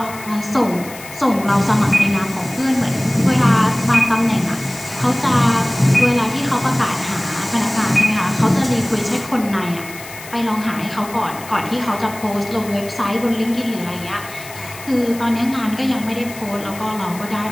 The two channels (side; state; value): left; noise; hiss, 16 dB below the sound